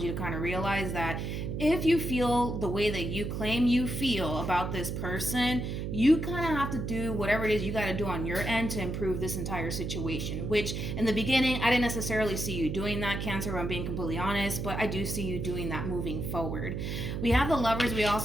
you to kind of realize that if you feel the way that you claim you feel about this person, you kind of have to do whatever it is you got to do on your end to improve this entire situation, which in the beginning, I didn't necessarily see you doing that, Cancer, if I'm being completely honest, but I do see you doing that moving forward. We have the Lovers. We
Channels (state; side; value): noise; right; hum, 3 dB below the sound